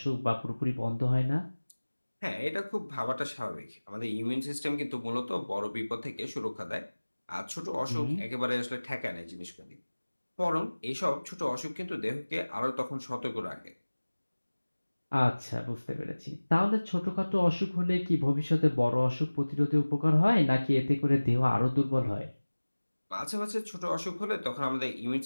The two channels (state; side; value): inverted; both; correlation -1.00